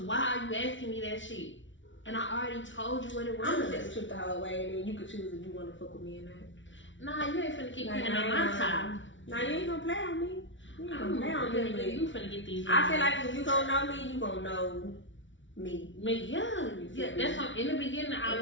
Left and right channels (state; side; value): late; right; 0.55 ms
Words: are you asking me that shit? And I already told you what it was. I'm gonna tell the truth the whole way and then you can choose if you wanna fuck with me or not. Nah, you ain't finna keep playing on my time. Nah, you ain't gonna play on me. You finna get these. I feel like if you gonna know me, you gonna know me. Yeah. That's why in the beginning I